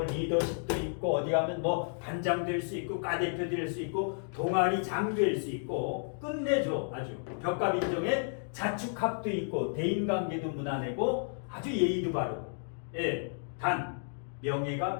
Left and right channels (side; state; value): right; silent; digital silence